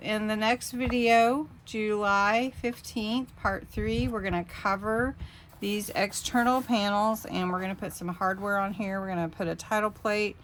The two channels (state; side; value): identical; both; correlation 1.00